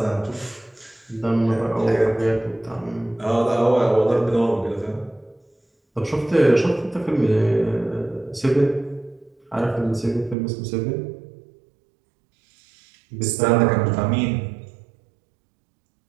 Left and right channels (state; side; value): drops out; left; at 10.4 s